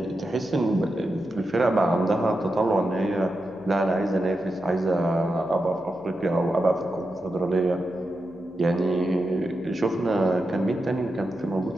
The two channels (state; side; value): noise; left; hum, 29 dB below the sound